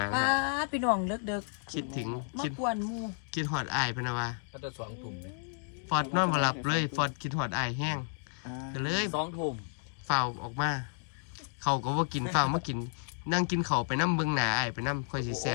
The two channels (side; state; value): right; silent; digital silence